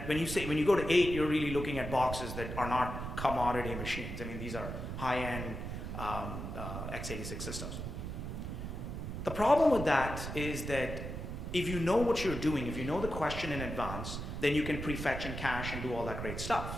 when you go to 8, you're really looking at boxes that are not commodity machines. I mean, these are high-end x86 systems. The problem with that is that if you know what you're doing, if you know the question in advance, then you can prefetch and cache and do all that great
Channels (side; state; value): right; noise; rumble, 6 dB below the sound